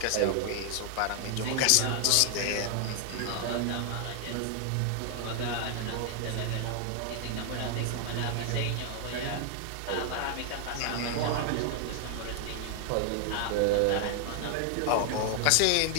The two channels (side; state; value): both; different; correlation 0.00